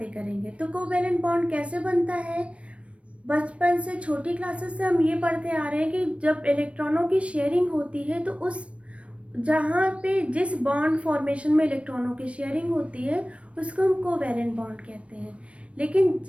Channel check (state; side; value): late; left; 0.062 ms